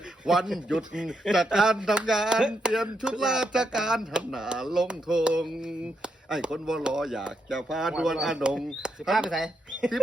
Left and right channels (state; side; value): normal; both; correlation 0.81